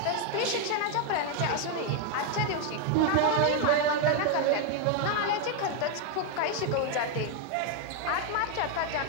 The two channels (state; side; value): different; both; correlation 0.01